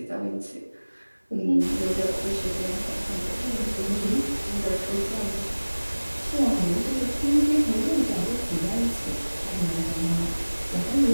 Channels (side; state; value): both; inverted; correlation -1.00